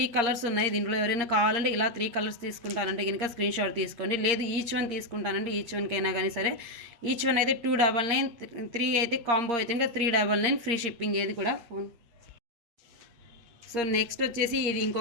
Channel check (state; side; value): late; left; 8.6 ms